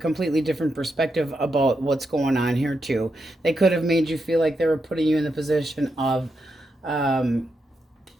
different perspective about what's going on here, too. They could have made you feel like they were putting you in the position of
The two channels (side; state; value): both; normal; correlation 0.84